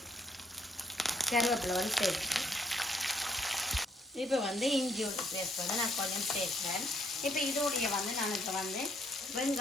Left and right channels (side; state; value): both; normal; correlation 0.69